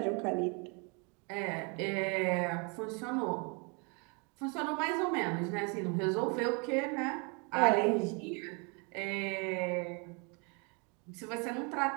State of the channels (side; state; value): left; quieter; 33.4 dB